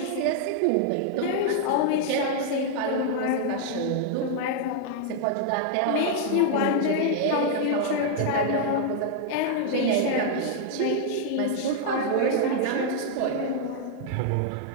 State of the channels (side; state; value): both; different; correlation 0.00